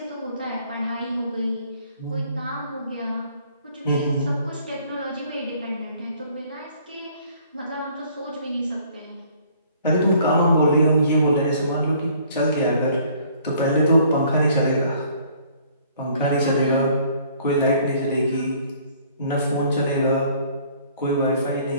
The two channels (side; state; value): both; inverted; correlation -0.58